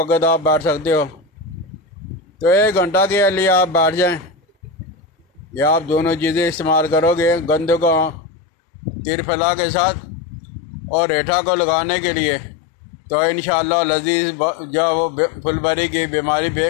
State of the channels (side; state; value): right; drops out; at 8.2 s